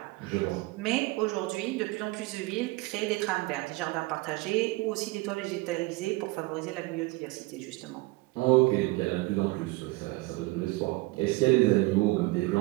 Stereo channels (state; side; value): quieter; left; 22.7 dB